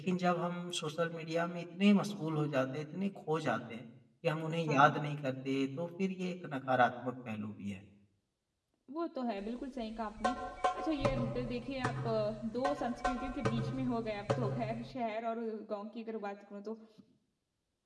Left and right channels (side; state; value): both; identical; correlation 1.00